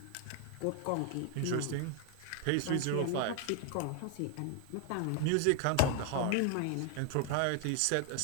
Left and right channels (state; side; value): different; both; correlation 0.01